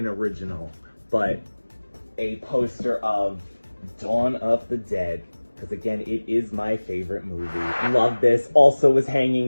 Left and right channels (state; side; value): inverted; both; correlation -1.00